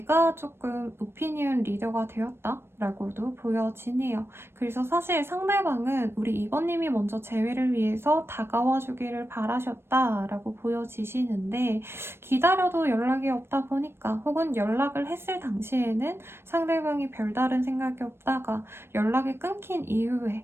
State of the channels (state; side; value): late; left; 0.12 ms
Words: 조금 오피니언 리더가 되었다라고도 보여지네요. 그래서 사실 상대방은 우리 이번님이 먼저 재회를 위해서 다가와 주기를 바라셨다라고 보여지시는데 기다려도 연락이 없다 보니까 혹은 연락을 했을 당시에는 상대방이 별다른 생각이 없다가 연락이 끊긴